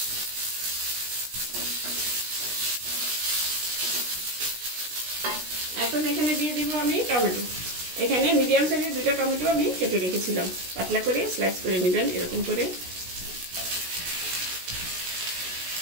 এখন এখানে দিয়ে দিব আমি টমেটো। এখানে মিডিয়াম সাইজের 2টা টমেটো আমি কেটে রেখেছিলাম। পাতলা করে স্লাইস করে নেবেন এরকম করে,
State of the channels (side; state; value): left; late; 16 ms